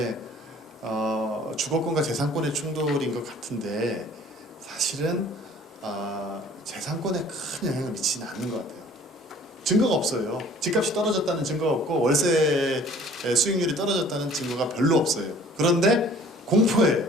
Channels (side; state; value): both; normal; correlation 0.51